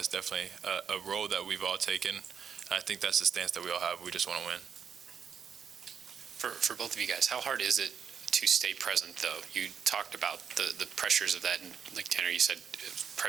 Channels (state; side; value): quieter; left; 7.3 dB